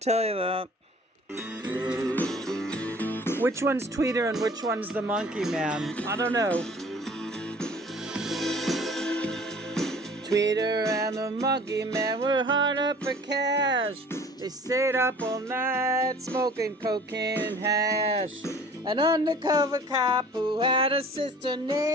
you that. Which one's Tweeter and which one's the monkey man? I don't know. Tweeter and the monkey man were hard up for cash. They stayed up all night smoking cocaine and hash. An undercover cop who had a sister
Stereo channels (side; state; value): both; normal; correlation 0.49